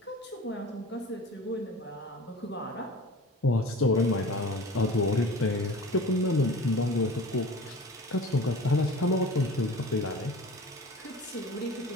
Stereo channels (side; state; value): both; normal; correlation 0.39